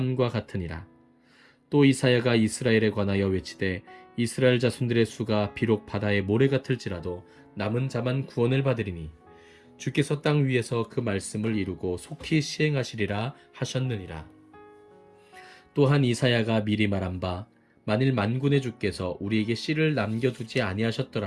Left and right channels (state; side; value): identical; both; correlation 1.00